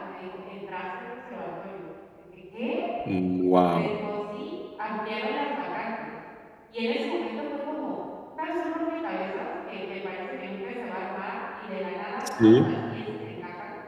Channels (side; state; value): both; identical; correlation 1.00